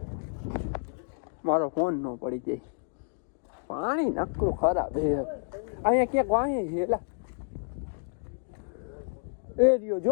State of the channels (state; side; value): silent; right; digital silence